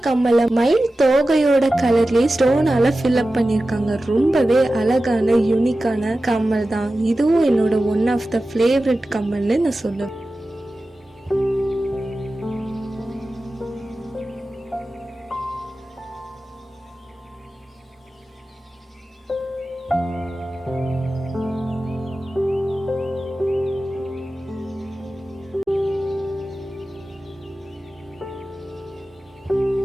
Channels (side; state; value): both; normal; correlation 0.94